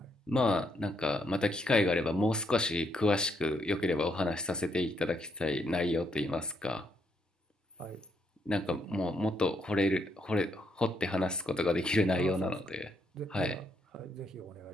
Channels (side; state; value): both; normal; correlation 0.75